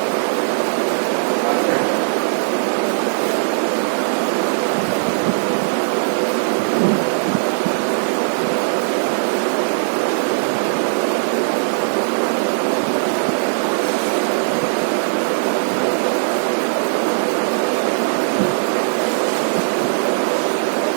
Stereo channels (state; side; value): silent; left; digital silence